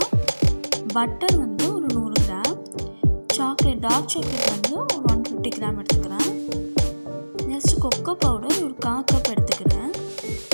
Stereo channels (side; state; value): both; inverted; correlation -1.00